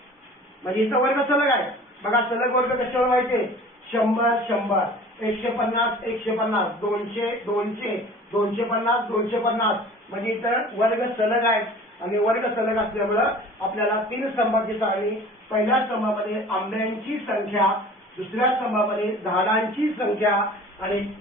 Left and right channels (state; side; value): normal; both; correlation 0.45